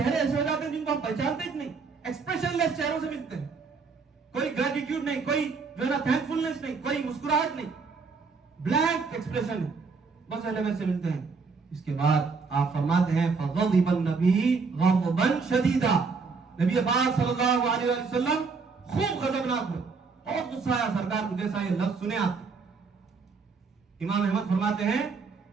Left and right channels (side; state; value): left; quieter; 4.8 dB